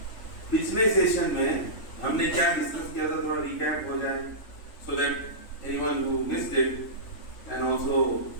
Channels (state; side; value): late; right; 3.3 ms